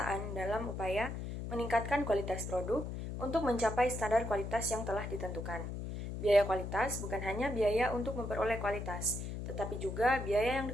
dalam upaya meningkatkan kualitas produk untuk mencapai standar kualitas yang telah ditentukan. Biaya kualitas bukan hanya biaya untuk memperoleh kualitas, tetapi juga biaya yang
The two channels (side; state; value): left; noise; hum, 6 dB below the sound